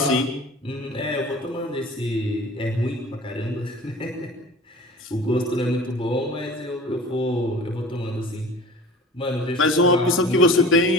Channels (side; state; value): both; normal; correlation 0.41